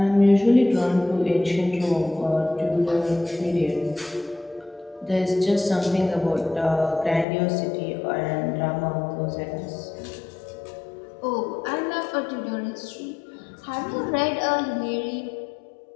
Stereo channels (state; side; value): drops out; right; at 7.2 s